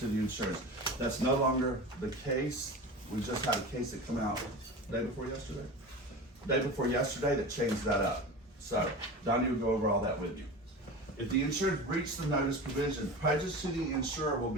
the insurance. That's no longer the case. We just had a case that came out day before yesterday that changed that up. So Donnie will go over all that with you. If the insured breached the notice provision, prejudice to the insurer will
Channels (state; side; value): normal; both; correlation 0.30